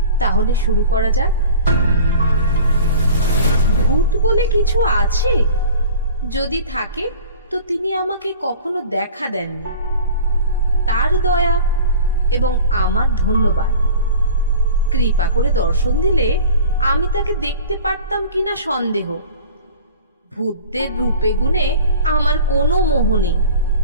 তাহলে শুরু করা যাক। ভূত বলে কিছু আছে? যদি থাকে তো তিনি আমাকে কখনো দেখা দেননি। তার দয়া এবং আমার ধন্যবাদ। কৃপা করে দর্শন দিলে আমি তাকে দেখতে পারতাম কিনা সন্দেহ। ভূতদের রূপে গুণে আমার কোনো মোহ নেই।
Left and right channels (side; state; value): both; inverted; correlation -0.42